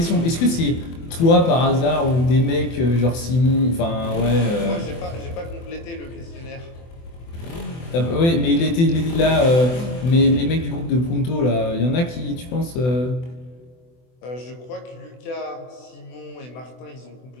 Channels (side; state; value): right; late; 24 ms